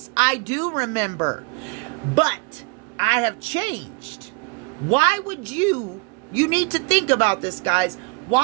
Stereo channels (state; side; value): quieter; left; 30.5 dB